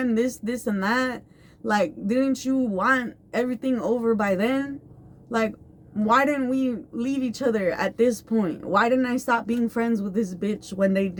this and that? Like, didn't you want everything over by then? Like, why didn't we leave each other at this point? Why didn't I stop being friends with this bitch when they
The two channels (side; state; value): both; identical; correlation 1.00